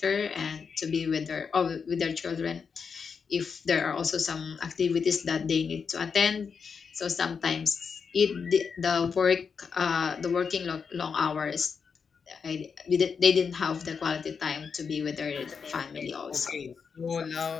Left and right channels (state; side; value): quieter; right; 5.9 dB